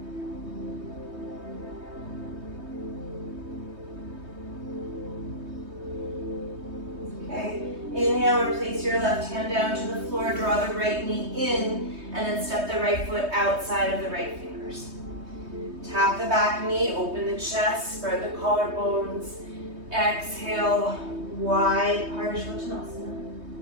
Okay. Inhale, replace your left hand down to the floor. Draw the right knee in. And then step the right foot outside of the right fingers. Tap the back knee, open the chest, spread the collarbones. Exhale, wide Parshvottanasana.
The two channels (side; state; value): left; late; 3.2 ms